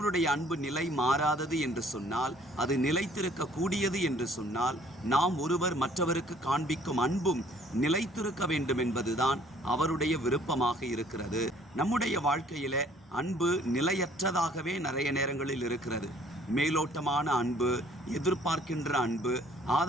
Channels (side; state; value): both; normal; correlation 0.58